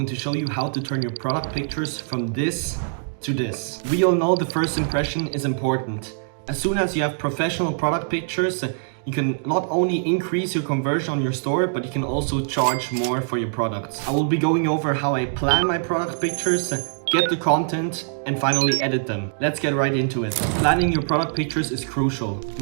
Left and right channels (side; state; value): left; silent; digital silence